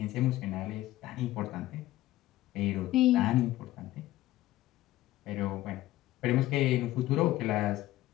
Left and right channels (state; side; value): quieter; right; 15.8 dB